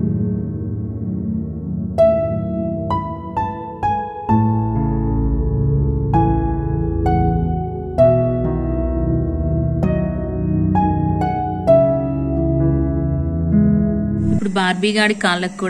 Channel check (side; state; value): both; identical; correlation 1.00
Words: ఇప్పుడు బార్బీ గాడి కాళ్ళకు